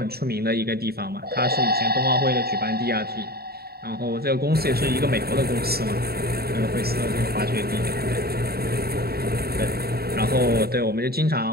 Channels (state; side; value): late; left; 0.45 ms